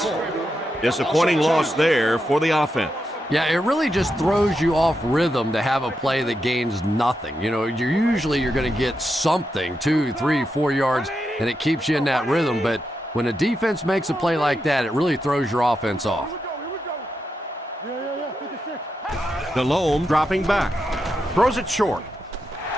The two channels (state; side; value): normal; both; correlation 0.85